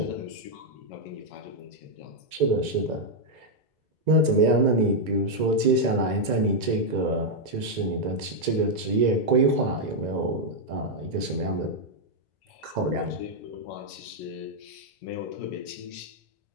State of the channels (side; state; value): left; late; 2.0 ms